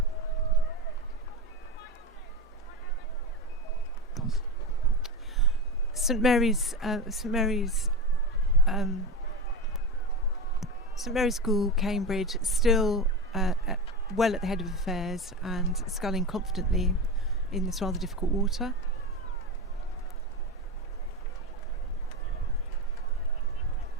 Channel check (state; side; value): normal; both; correlation 0.21